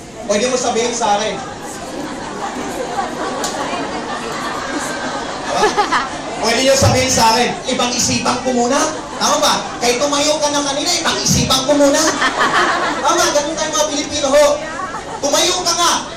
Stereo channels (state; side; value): noise; right; hum, 29 dB below the sound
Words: pwede mo sabihin sa akin. Pwede nyo sabihin sa akin, ibang isipan ko muna. Tama ba? Kahit tumayo ka na kanina, ibang isipan ko muna. Tama, ganun tayo mga Pilipino ho. Tumayo ka nga.